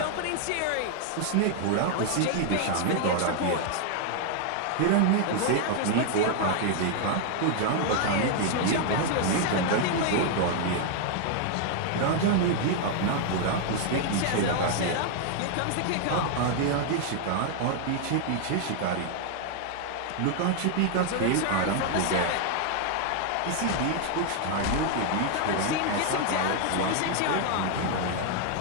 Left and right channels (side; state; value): both; different; correlation 0.00